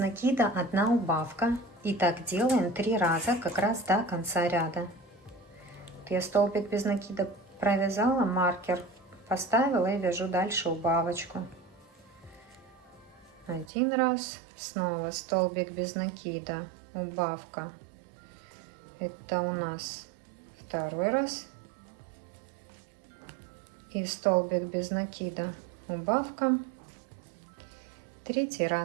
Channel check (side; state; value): left; drops out; at 13.7 s